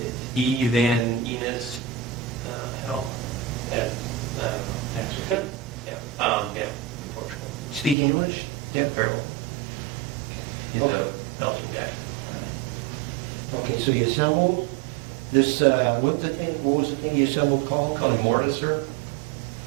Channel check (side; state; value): left; drops out; at 8.0 s